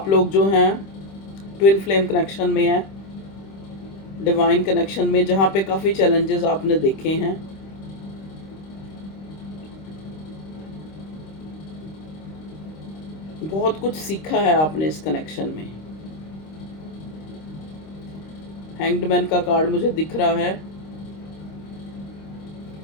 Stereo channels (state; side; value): late; right; 26 ms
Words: लोग जो हैं ट्विन फ्लेम कनेक्शन में हैं, डिवाइन कनेक्शन में, जहाँ पे काफ़ी चैलेंजेस आपने देखे हैं। बहुत कुछ सीखा है आपने इस कनेक्शन में। हैंग्ड मैन का कार्ड मुझे दिख रहा है।